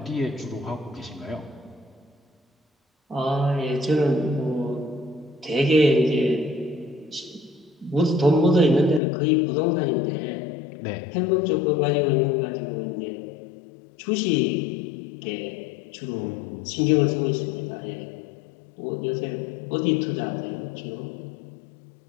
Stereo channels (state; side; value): drops out; right; at 9.0 s